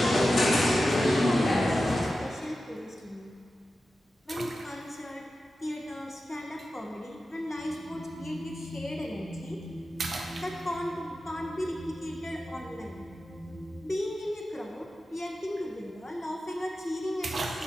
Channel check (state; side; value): normal; both; correlation 0.93